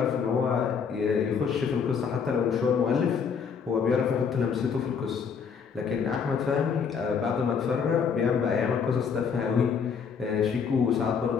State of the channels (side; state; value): right; quieter; 6.3 dB